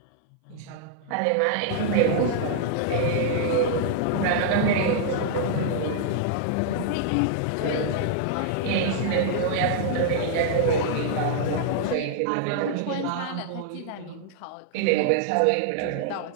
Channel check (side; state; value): both; different; correlation -0.01